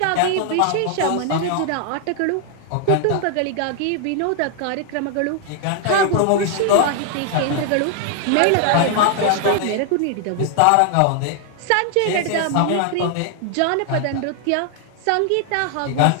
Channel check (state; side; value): different; both; correlation 0.00